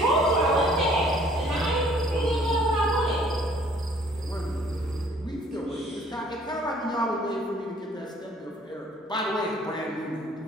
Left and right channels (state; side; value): normal; both; correlation 0.58